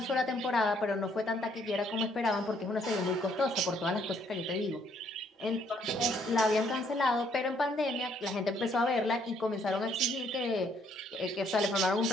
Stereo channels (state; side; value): normal; both; correlation 0.67